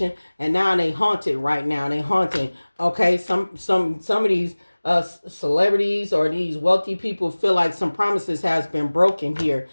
and now they haunted right now. They haunting. Okay, some of these celebrities or these wealthy people feel like some promises has been broken here,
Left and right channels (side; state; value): both; inverted; correlation -1.00